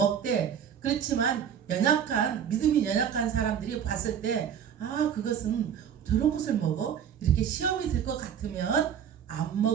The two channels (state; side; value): quieter; left; 8.5 dB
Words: 그렇지만 믿음이 연약한 사람들이 봤을 때, 그것은 저런 것을 먹어? 이렇게 시험이 들 것 같으면 안